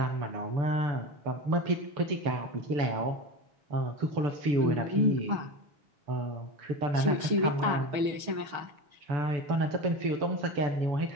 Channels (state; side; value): late; left; 6.4 ms